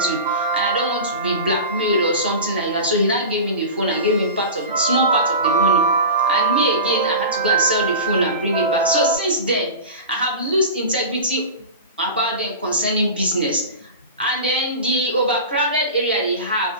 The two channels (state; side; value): inverted; both; correlation -0.30